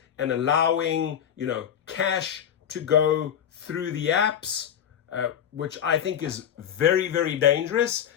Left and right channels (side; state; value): right; quieter; 9.2 dB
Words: and allowing, cash to go through the apps, which I think is very, very dangerous